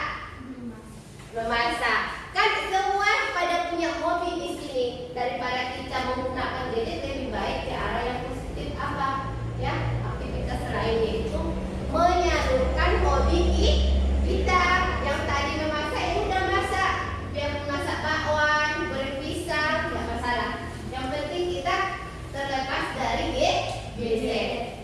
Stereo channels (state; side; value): identical; both; correlation 1.00